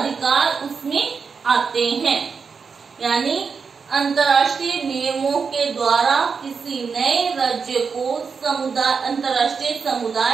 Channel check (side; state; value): left; quieter; 5.5 dB